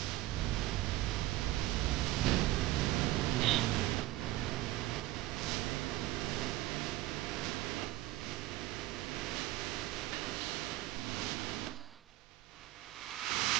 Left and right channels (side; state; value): left; quieter; 16.6 dB